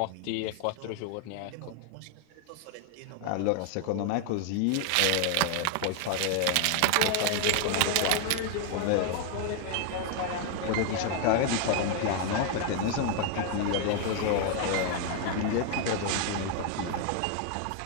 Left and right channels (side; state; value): both; different; correlation 0.00